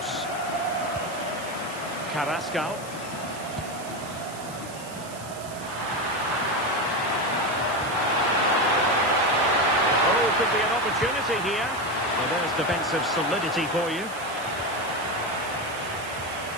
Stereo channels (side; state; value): right; noise; hiss, 15 dB below the sound